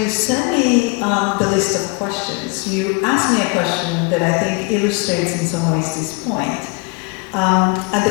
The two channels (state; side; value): quieter; right; 28.5 dB